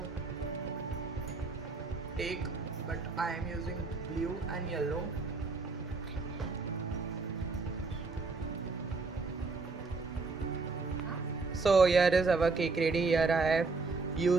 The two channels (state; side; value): quieter; left; 4.0 dB